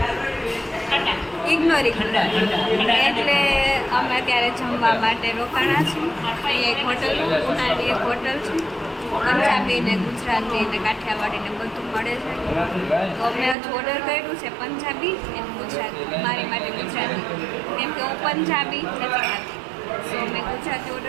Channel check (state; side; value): drops out; left; at 13.6 s